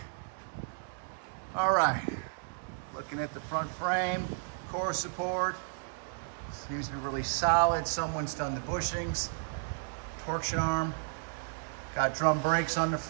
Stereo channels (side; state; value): left; silent; digital silence